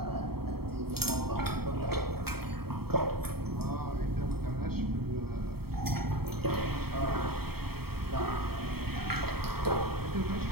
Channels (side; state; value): left; late; 0.95 ms